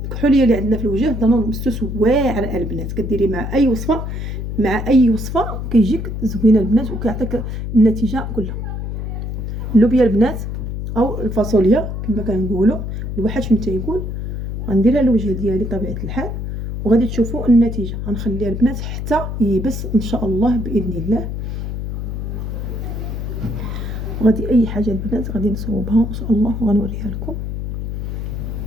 اللي عندنا في الوجه دانون مسوس واعر البنات، كديري مع اي وصفه، كيجيك زوينه البنات وكيعطيك النتيجه كلها. اللوبيا البنات او الفاصوليا كما كنقولوا، الواحد فين تيقول. غنديرها للوجه ديالي طبيعه الحال وغادي تشوفوا النتيجه. غنخليها البنات حتى يبس ان شاء الله باذن الله. وغادي اي حاجه البنات غادي نصوبها ان شاء الله وغنوريها لكم.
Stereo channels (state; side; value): noise; left; hum, 4 dB below the sound